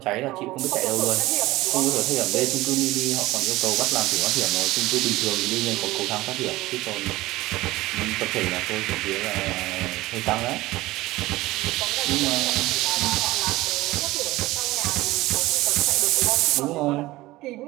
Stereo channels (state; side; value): quieter; left; 18.5 dB